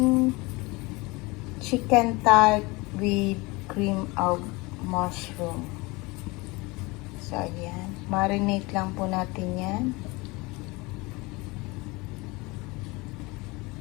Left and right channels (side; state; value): right; quieter; 24.5 dB